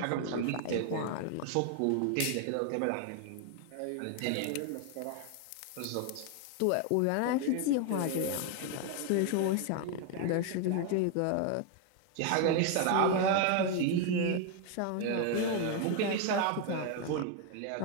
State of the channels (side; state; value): both; different; correlation 0.01